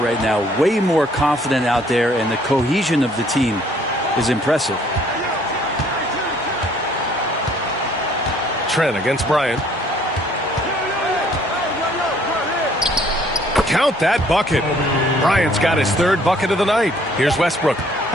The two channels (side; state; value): both; normal; correlation 0.61